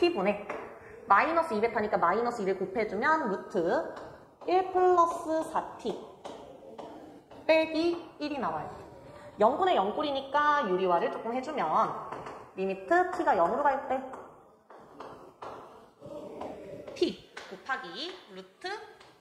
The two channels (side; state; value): both; identical; correlation 1.00